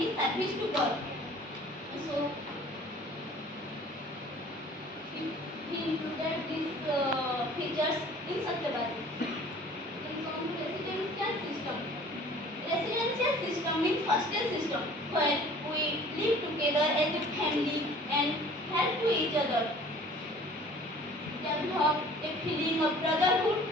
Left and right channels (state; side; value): normal; both; correlation 0.49